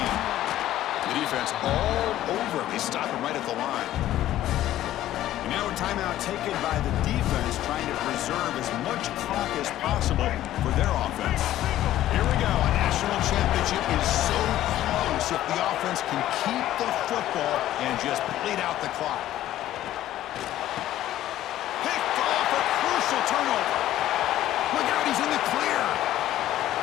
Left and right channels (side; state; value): right; quieter; 13.5 dB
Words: The defense all over him. They stop him right at the line. And now a timeout taken by the defense, trying to preserve as much clock as possible for their offense. Here we go. A national championship is so close if the offense can keep the football and just bleed out the clock. Picked off, a crucial turnover. Look out, he's in the clear.